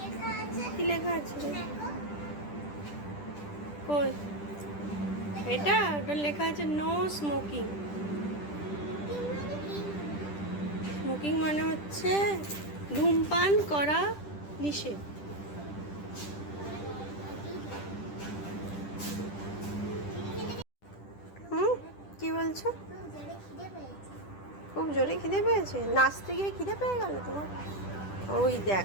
আছে। কি লেখা আছে রে? দেখো কই? এটা ওটা লেখা আছে নো স্মোকিং। কি মানে কি? স্মোকিং মানে হচ্ছে ধূমপান করা নিষেধ। হুম, কি বলছো? খুব জোরে খিদে পেয়েছে? নাচতে গিয়ে খিদে পেয়ে গেল তোমার? ওই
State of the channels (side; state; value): right; late; 10 ms